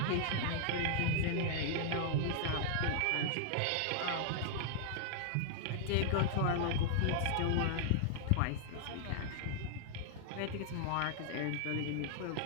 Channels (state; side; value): different; both; correlation -0.01